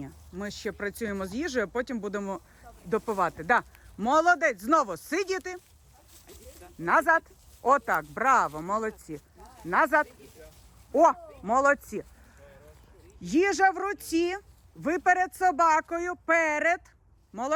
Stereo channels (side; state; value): both; identical; correlation 1.00